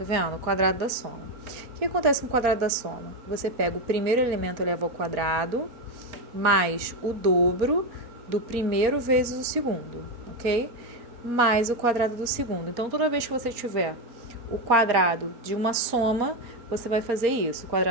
vendo? O quadrado da soma. O que acontece com o quadrado da soma? Você pega o primeiro elemento eleva ao quadrado, mais o dobro do primeiro vezes o segundo, ok? Mais o quadrado do segundo. Então, toda vez que você tiver o quadrado de uma soma, você vai fazer isso. O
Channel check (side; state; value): left; late; 4.3 ms